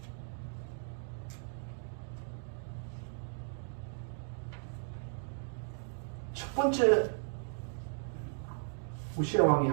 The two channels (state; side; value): silent; left; digital silence